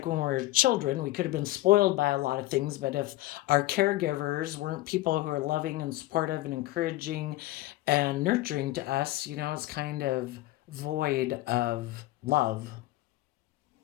when we were children, we could have been spoiled by a lot of things, but if our caregivers weren't people who are loving and supportive and encouraging and nurturing to us, it's kind of void of love.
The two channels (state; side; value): quieter; right; 17.2 dB